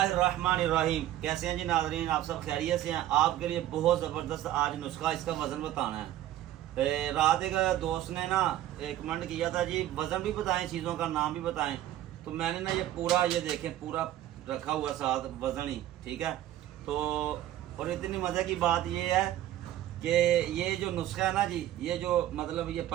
कैसे हैं जी नाज़रीन, आप सब खैरियत से हैं। आपके लिए बहुत ज़बरदस्त आज नुस्खा, इसका वज़न बताना है। रात एक दोस्त ने ना एक कमेंट किया था जी, वज़न भी बताएं, चीज़ों का नाम भी बताएं। तो मैंने ना ये पूरा, ये देखें, पूरा रखा हुआ साथ वज़न ही, ठीक है। तो और इतनी मज़े की बात ये है कि ये जो नुस्खा है ना जी, ये जो मतलब ये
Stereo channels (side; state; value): left; quieter; 13.3 dB